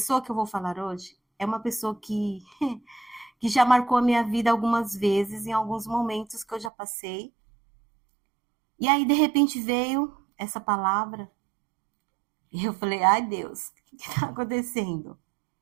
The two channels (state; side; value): drops out; left; at 6.7 s